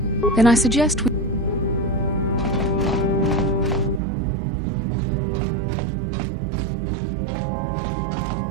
Then I suggest we...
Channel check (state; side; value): drops out; left; at 4.0 s